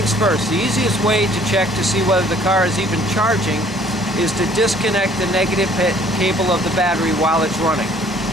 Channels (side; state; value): both; normal; correlation 0.57